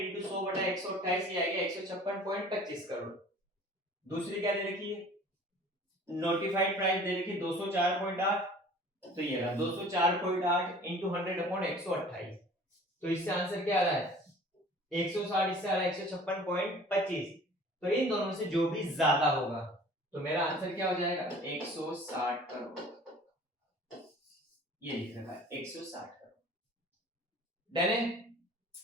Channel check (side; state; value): both; normal; correlation 0.47